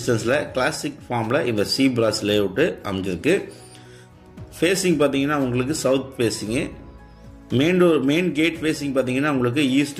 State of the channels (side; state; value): both; identical; correlation 1.00